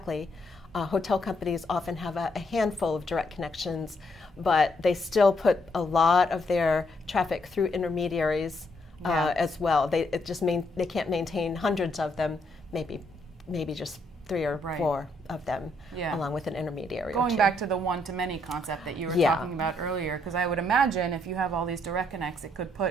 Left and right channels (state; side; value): normal; both; correlation 0.73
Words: Hotel companies often have a handful of direct connections, but they still put a lot of their traffic through intermediaries as well. They can't maintain hundreds of them, maybe just 3 or 4 of them, along with an intermediary. Going back to the one-to-many concept that you were talking about earlier, because I would imagine if you have all these direct connects, it could